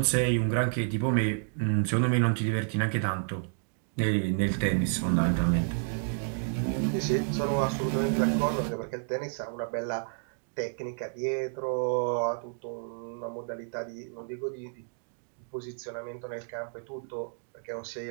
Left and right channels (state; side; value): silent; left; digital silence